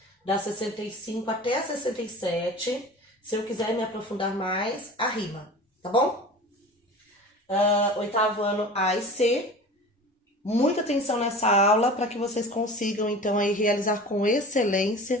da 65 até a 67. Se eu quiser me aprofundar mais, a rima, tá bom? Oitavo ano A e C. Muita atenção nessa aula para que vocês consigam, então, aí realizar com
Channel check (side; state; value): both; normal; correlation 0.37